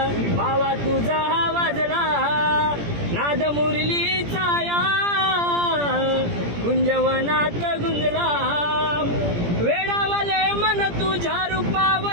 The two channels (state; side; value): late; left; 17 ms